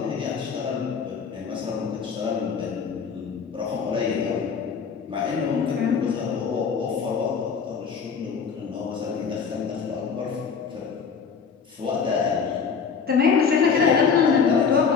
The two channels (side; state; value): right; quieter; 6.1 dB